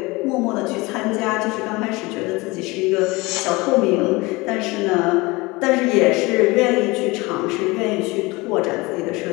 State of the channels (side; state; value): right; quieter; 23.3 dB